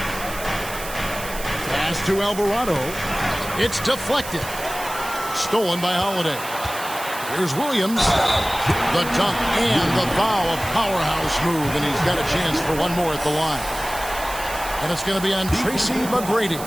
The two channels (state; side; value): noise; right; hiss, 11 dB below the sound